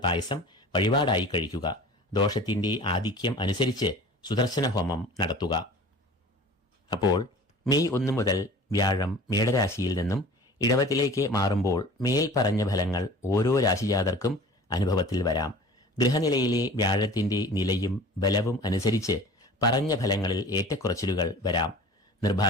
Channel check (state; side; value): normal; both; correlation 0.42